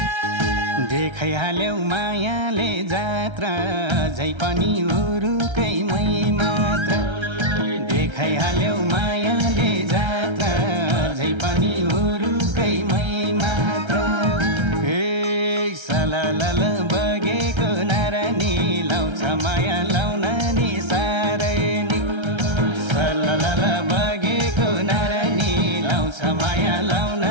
देखाइहाल्यौ मायाले जात्रा अझै पनि उरुकै मै मात्र देखाइहाल्यौ मायाले जात्रा अझै पनि उरुकै मै मात्र हे सललल बगेको नारानी लाउँछ माया लाउन नि साह्रै नि सललल बगेको नारानी लाउँछ माया लाउन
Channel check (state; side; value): late; left; 1.3 ms